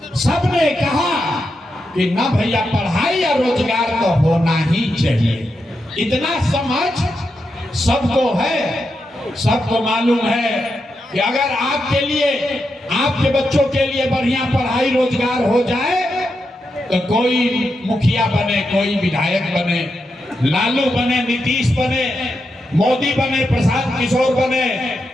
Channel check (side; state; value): both; normal; correlation 0.86